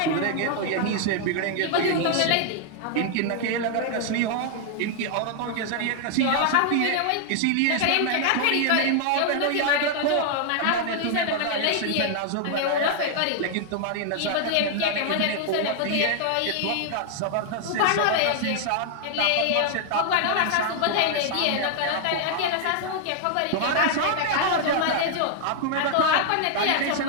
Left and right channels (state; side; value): different; both; correlation 0.00